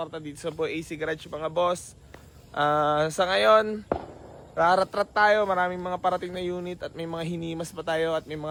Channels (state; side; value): identical; both; correlation 1.00